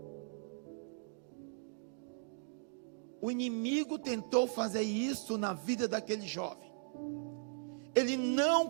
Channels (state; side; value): silent; left; digital silence